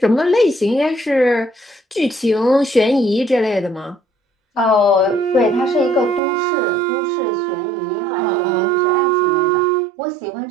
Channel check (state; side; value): drops out; left; at 6.2 s